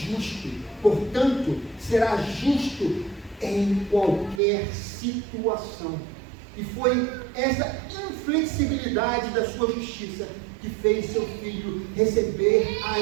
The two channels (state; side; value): drops out; left; at 4.4 s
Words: portanto, será justo em qualquer situação. E foi essa inflexibilidade da sua justiça que fez seu filho receber a